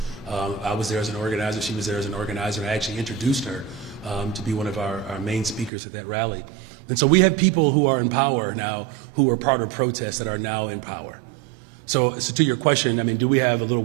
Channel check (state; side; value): drops out; left; at 5.7 s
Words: I was there as an organizer, she was there as an organizer, and I actually introduced her to be one of our main speakers at that rally. And so we have people who are in power now, who are part of protests that are now in power. So to your question, I mean, do we have a little